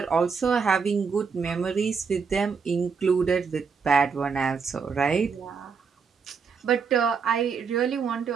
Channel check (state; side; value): quieter; left; 5.6 dB